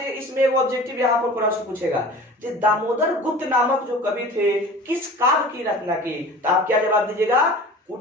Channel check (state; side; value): normal; both; correlation 0.40